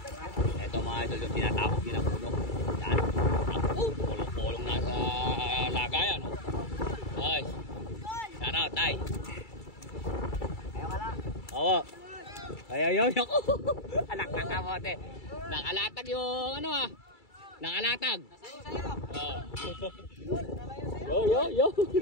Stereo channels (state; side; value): late; right; 2.3 ms